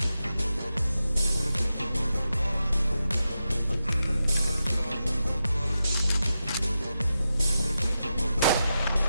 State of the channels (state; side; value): inverted; both; correlation -0.89